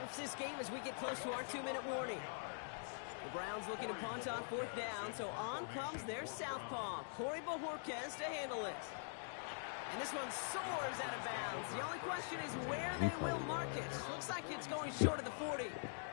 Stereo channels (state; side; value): silent; right; digital silence